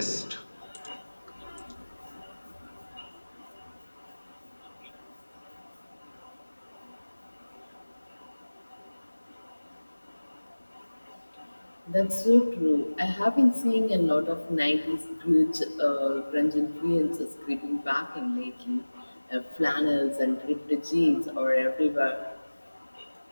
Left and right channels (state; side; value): inverted; both; correlation -1.00